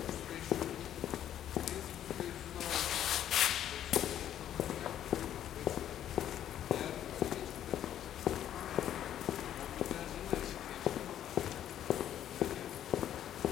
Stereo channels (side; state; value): right; quieter; 10.9 dB